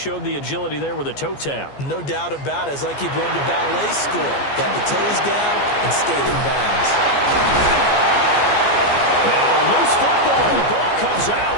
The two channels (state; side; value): late; right; 14 ms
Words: the agility there with a toe tap. No doubt about it. It's like he'd been to ballet school. Got the toes down and stayed in bounds. Now, loose football. The ball comes out.